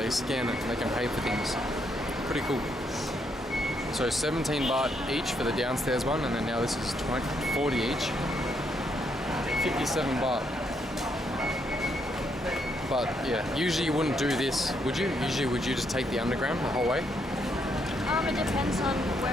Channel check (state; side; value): normal; both; correlation 0.75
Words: scan it and they can pay for things. Pretty cool. So 17 baht each for the downstairs one, and then now this is 40 each. 57 baht. But yeah, usually you wouldn't do this, would you? Usually would you just take the underground the whole way? It depends on